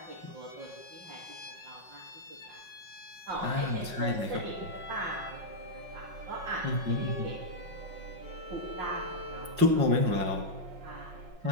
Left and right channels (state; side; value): late; left; 5.5 ms